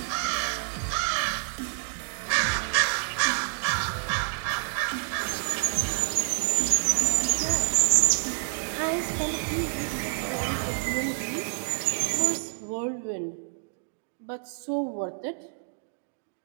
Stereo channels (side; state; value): left; silent; digital silence